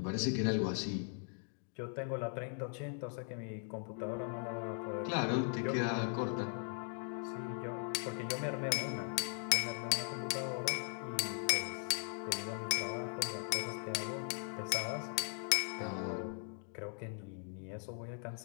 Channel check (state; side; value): silent; right; 51 dB below the other